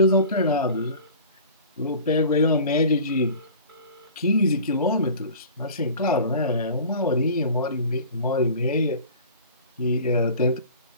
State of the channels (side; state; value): both; inverted; correlation -0.42